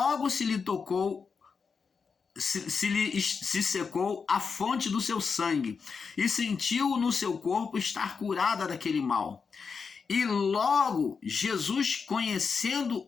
se lhe tocou, se secou a fonte do seu sangue, e sentiu no seu corpo estar curada daquele mal. E logo Jesus, conhecendo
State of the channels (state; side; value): quieter; right; 5.5 dB